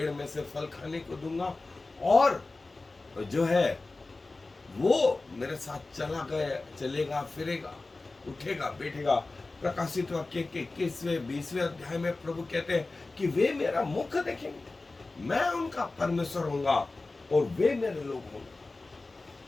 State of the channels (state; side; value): quieter; right; 3.4 dB